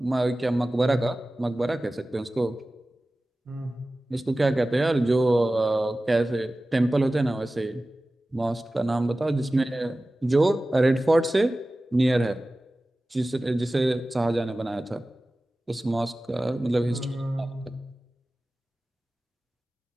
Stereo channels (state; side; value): normal; both; correlation 0.96